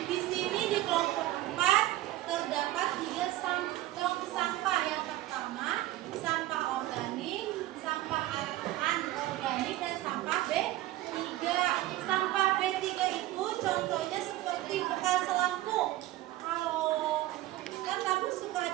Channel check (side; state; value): left; quieter; 16.1 dB